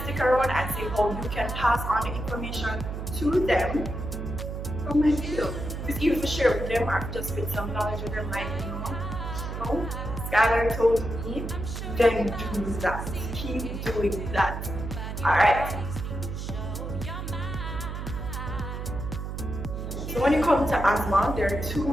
stick around and see how you can pass on the information to them from my video. It's even to share with them or just with some knowledge with them, like Skylar told me, then do that. Keep doing that. Alright. So when you come to asthma, there are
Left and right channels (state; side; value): noise; right; hum, 6 dB below the sound